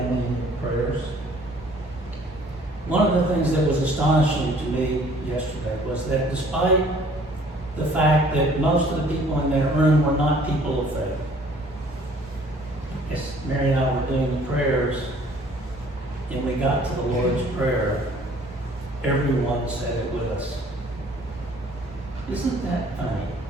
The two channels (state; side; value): normal; both; correlation 0.56